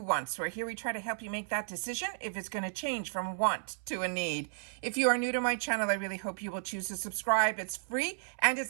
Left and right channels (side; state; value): left; silent; 55 dB below the other